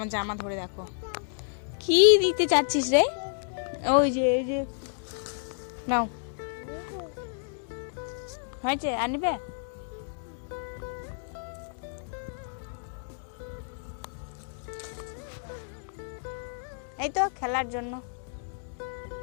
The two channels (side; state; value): right; silent; digital silence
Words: জামা ধরে। দেখো কি দিতে চাচ্ছিস রে? ওই যে এই যে নাও, হয়েছে আনবে? এই তো খেলার জন্য।